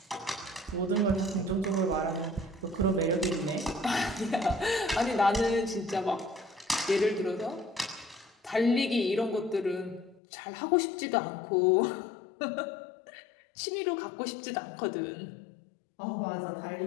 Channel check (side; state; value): right; drops out; at 10.2 s